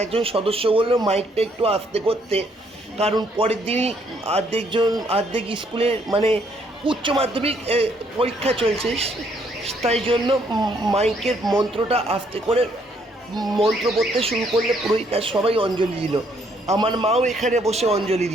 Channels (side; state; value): both; normal; correlation 0.68